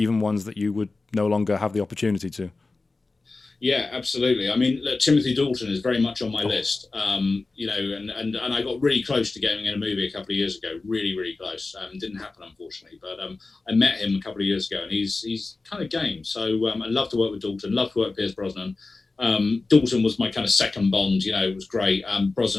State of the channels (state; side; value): quieter; right; 3.6 dB